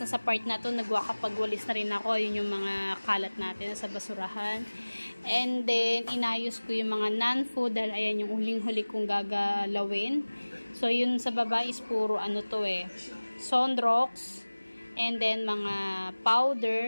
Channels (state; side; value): inverted; both; correlation -1.00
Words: na sa part na to. Nagwakapagwalis na rin ako. Yun yung mga kalat natin sa basurahan. And then, inayos ko yung mga non-food. Dahil, ayan, yung huling-huli kong gagalawin. So, yun sa baba is puro ano to eh. Sunrocks. And then, mga